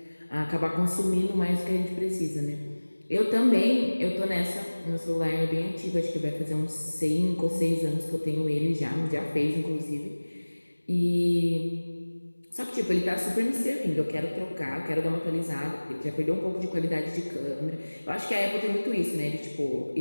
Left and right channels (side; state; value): both; inverted; correlation -1.00